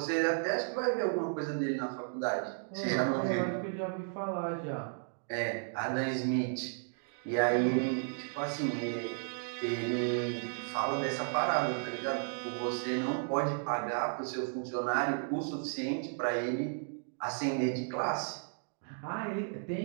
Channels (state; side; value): silent; left; digital silence